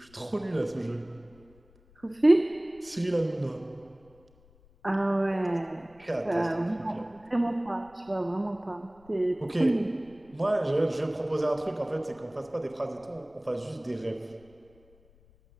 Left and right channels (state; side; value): noise; left; rumble, 28 dB below the sound